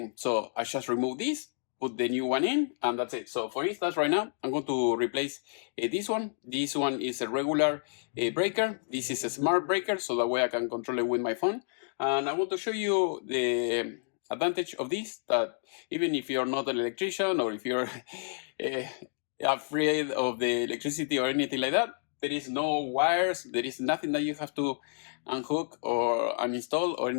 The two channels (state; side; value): silent; right; digital silence